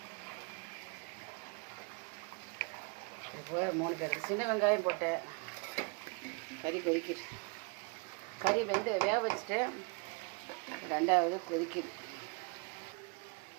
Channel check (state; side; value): quieter; left; 32.8 dB